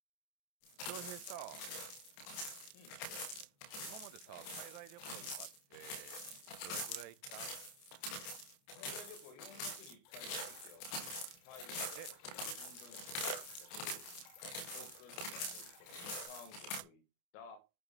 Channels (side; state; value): right; late; 29 ms